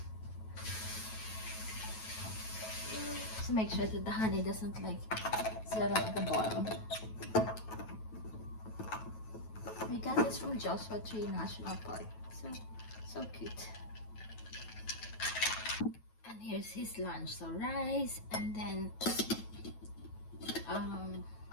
So make sure that the honey doesn't settle at the bottom. We got this from Joshua Tree National Park. So cute. And here's his lunch. So rice, and then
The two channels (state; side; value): late; right; 9.2 ms